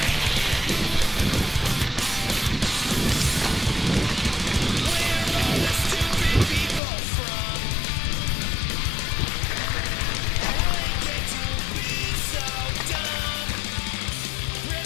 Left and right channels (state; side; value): drops out; right; at 6.8 s